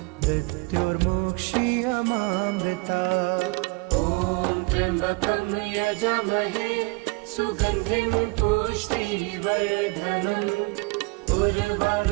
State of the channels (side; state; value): left; quieter; 27.6 dB